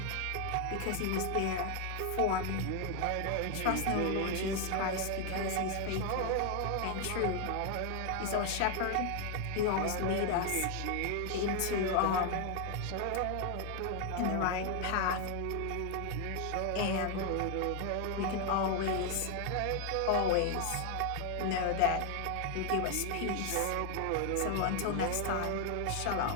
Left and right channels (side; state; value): both; different; correlation 0.01